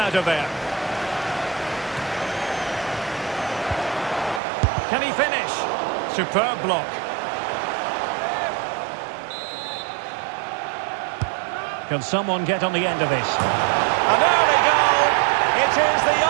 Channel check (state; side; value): drops out; left; at 4.4 s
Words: of there. Can he finish? Superb block. Can someone get on the end of this? And there we go! It is the